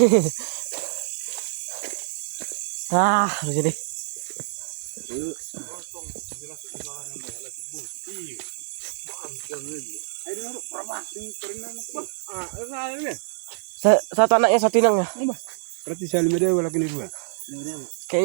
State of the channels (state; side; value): silent; left; digital silence